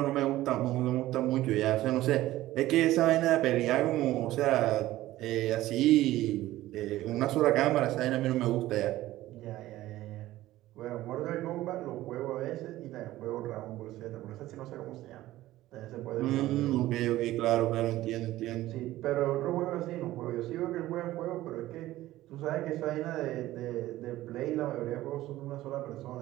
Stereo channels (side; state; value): left; quieter; 15.8 dB